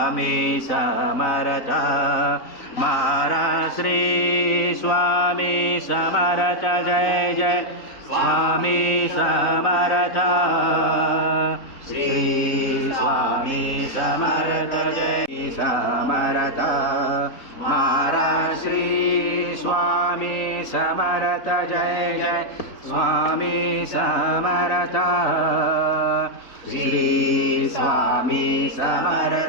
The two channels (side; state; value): right; late; 3.9 ms